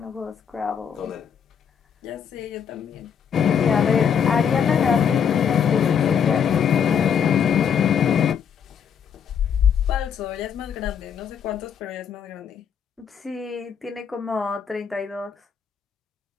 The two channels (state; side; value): quieter; right; 7.6 dB